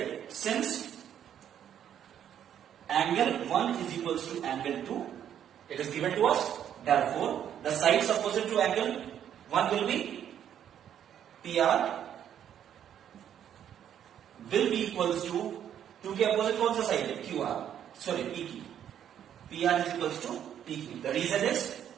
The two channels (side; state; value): left; quieter; 9.7 dB